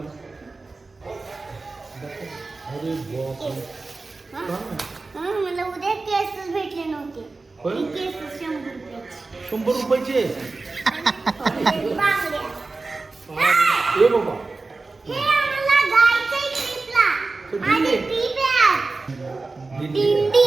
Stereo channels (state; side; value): quieter; left; 3.7 dB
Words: मला उद्या केसच भेटले नव्हते. केस 100 रुपयाचे. बांगड्या. ए बाबा, हे आम्हाला जायचंय ट्रिपला. आणि ट्रिप आहे, दिंडी